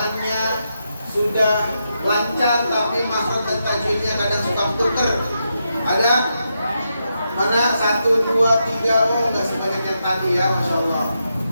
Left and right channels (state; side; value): inverted; both; correlation -0.84